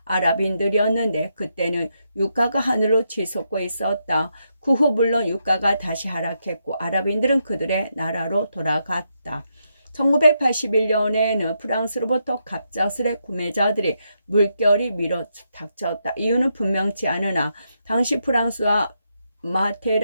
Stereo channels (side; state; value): both; inverted; correlation -0.81